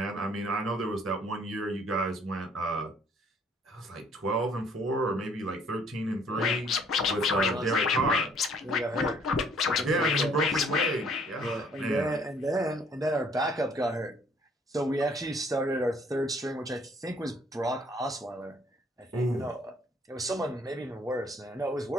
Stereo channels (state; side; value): normal; both; correlation 0.61